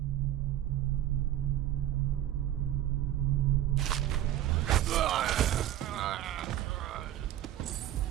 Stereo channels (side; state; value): left; quieter; 12.6 dB